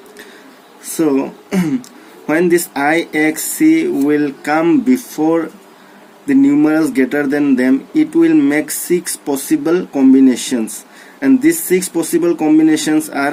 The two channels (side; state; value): both; identical; correlation 1.00